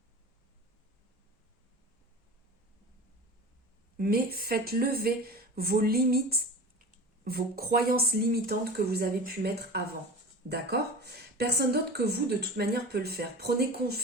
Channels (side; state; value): both; normal; correlation 0.34